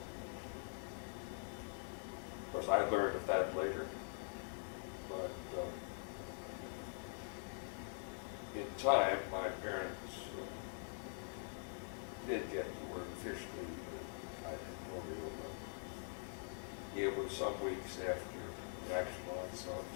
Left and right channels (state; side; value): silent; right; digital silence